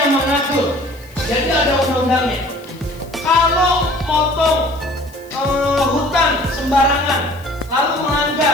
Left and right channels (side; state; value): left; noise; hiss, 26 dB below the sound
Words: mengatur. Jadi ada undang-undangnya. Kalau motong hutan sembarangan, lalu